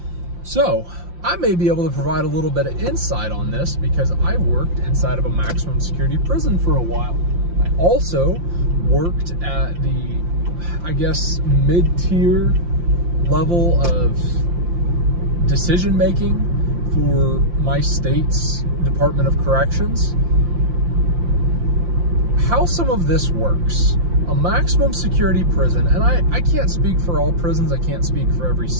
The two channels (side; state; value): left; late; 5.7 ms